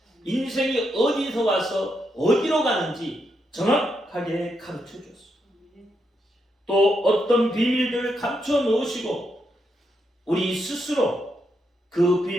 인생이 어디서 와서 어디로 가는지 정확하게 가르쳐 줬습니다. 또 어떤 비밀들을 감춰 놓으시고 우리 스스로 그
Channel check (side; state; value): both; normal; correlation 0.81